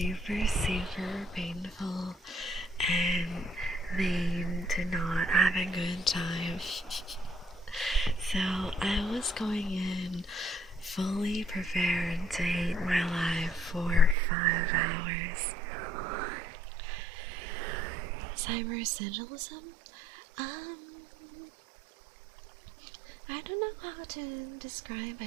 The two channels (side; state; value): left; drops out; at 14.2 s